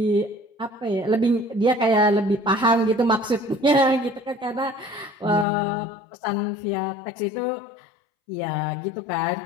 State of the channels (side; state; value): right; drops out; at 5.5 s